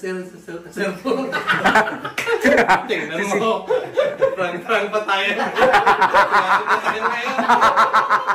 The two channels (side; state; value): both; identical; correlation 1.00